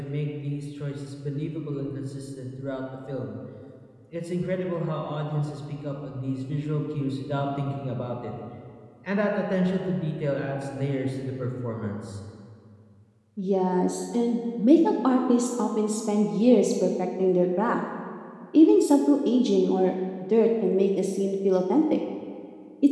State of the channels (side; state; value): both; identical; correlation 1.00